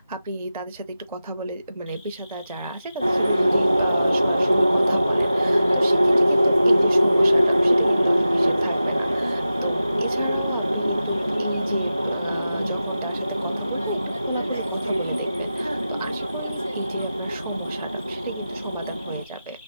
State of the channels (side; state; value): both; inverted; correlation -0.93